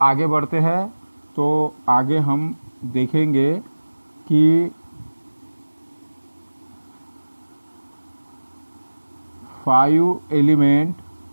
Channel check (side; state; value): both; inverted; correlation -1.00